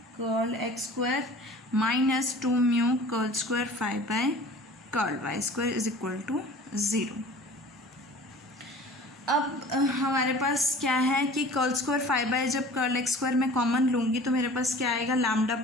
curl x square minus 2 mu curl square phi by curl Y square is equal to 0। अब हमारे पास क्या है कि कर्ल स्क्वायर 5 जब कर्ल एक्स स्क्वायर मैं कॉमन लूँगी तो मेरे पास क्या आएगा, लैम्डा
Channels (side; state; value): both; normal; correlation 0.44